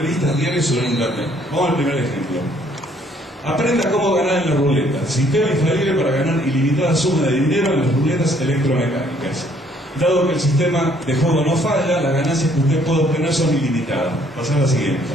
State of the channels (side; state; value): both; normal; correlation 0.64